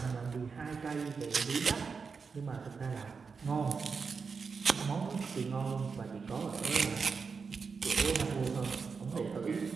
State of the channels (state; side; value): quieter; left; 5.3 dB